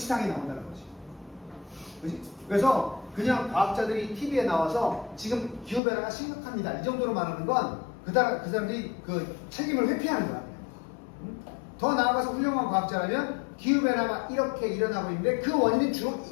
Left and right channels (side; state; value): right; drops out; at 5.8 s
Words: 나온다는 거지. 그치? 그래서 그냥 과학자들이 TV에 나와서 지금 기후변화가 심각합니다. 이 정도로 말하는 건 그 사람들이 그 책임을 회피하는 거야. 응? 더 나아가서 훌륭한 과학자라면 기후변화가 이렇게 일어나고 있는데 그 원인은 주로